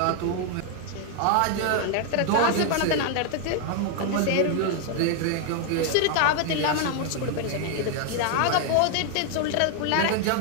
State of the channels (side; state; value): both; different; correlation 0.00